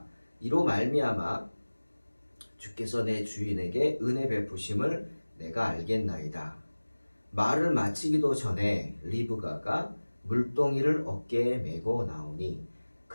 이로 말미암아 주께서 내 주인에게 은혜 베푸심을 내가 알겠나이다. 말을 마치기도 전에 리브가가 물동이를 어깨에 메고 나오니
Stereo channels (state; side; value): inverted; both; correlation -1.00